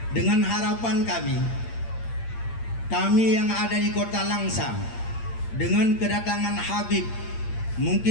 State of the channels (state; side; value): late; right; 8.7 ms